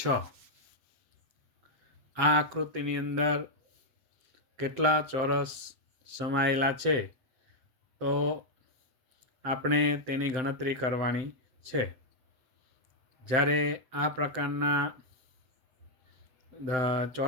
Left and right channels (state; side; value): late; left; 7.8 ms